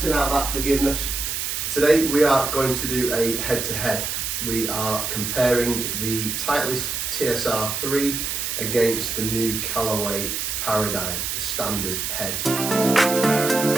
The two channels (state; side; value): noise; right; hiss, 2 dB below the sound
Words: out that forgiveness. Today we are going to do a head-to-head. We are comparing the Titleist TSR3 against the new Callaway Paradym, the standard head.